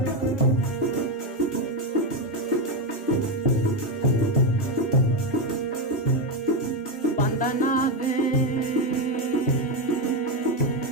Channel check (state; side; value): normal; both; correlation 0.09